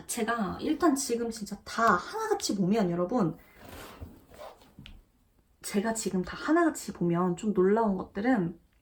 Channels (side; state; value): both; identical; correlation 1.00